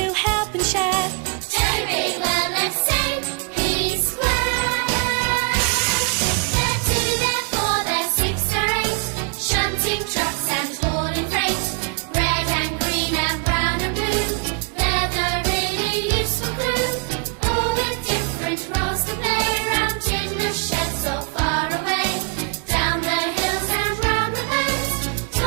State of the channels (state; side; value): quieter; left; 34.1 dB